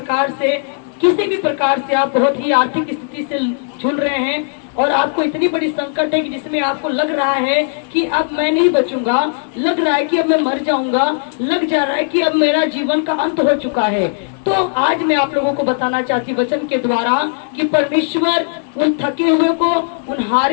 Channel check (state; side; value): silent; right; digital silence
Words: प्रकार से आप बहुत ही आर्थिक स्थिति से झूल रहे हैं और आपको इतनी बड़ी संकट है कि जिसमें आपको लग रहा है कि अब मैं नहीं बचूंगा, लग रहा है कि अब मैं मर जाऊंगा, लग जा रहा है कि अब मेरा जीवन का अंत हो चुका है, तो आज मैं आप लोगों को बताना चाहती वचन के द्वारा कि परमेश्वर उन थके हुए को, उन